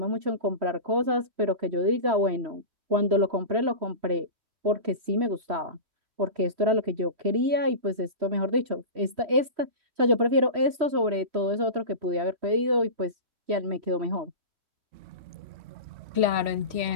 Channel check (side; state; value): left; late; 3.1 ms